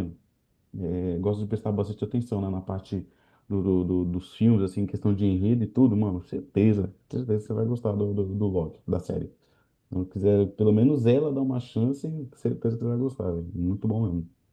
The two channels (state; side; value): identical; both; correlation 1.00